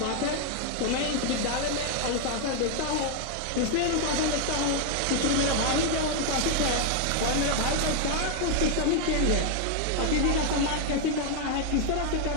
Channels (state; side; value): different; both; correlation 0.00